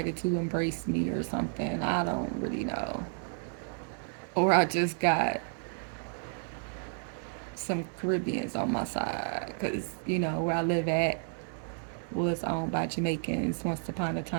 to embrace me or something. I don't really know. Or I just got some Caribbeans on my side because, where I live at was owned by Jamaicans once upon a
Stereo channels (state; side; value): silent; left; 57 dB below the other